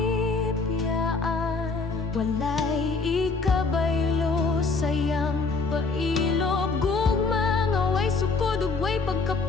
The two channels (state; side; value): quieter; right; 4.1 dB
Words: Walay ikabaylo sayang pailob, gugma nga way sukod ug way